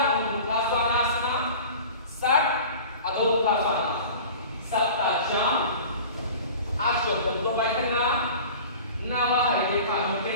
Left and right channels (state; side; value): inverted; both; correlation -0.40